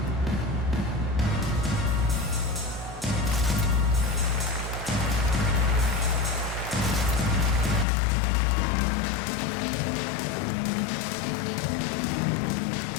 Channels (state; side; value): drops out; right; at 7.9 s